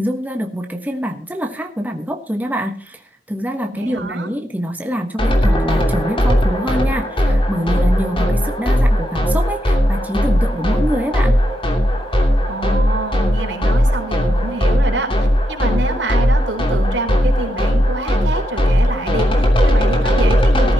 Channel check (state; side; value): normal; both; correlation 0.84